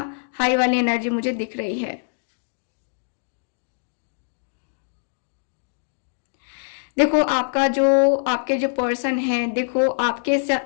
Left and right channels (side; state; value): right; silent; digital silence